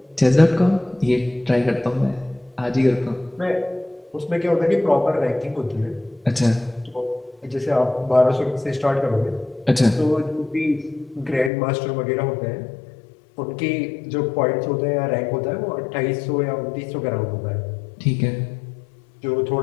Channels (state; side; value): drops out; right; at 11.5 s